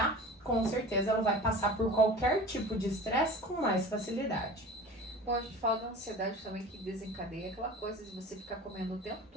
com certeza ela vai passar por qualquer tipo de estresse com mais facilidade. Bom, a gente fala da ansiedade também que desencadeia aquela coisa de você ficar comendo o tempo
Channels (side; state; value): both; normal; correlation 0.38